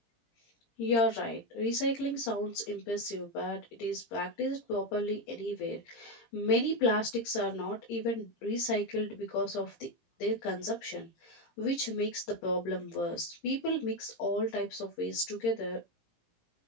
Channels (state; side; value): late; right; 17 ms